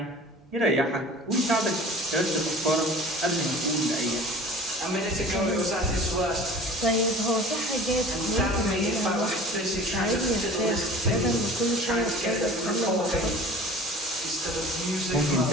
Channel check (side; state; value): both; normal; correlation 0.43